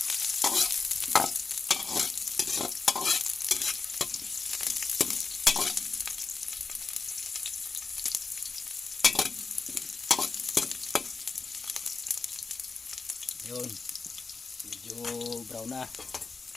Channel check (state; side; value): quieter; right; 4.5 dB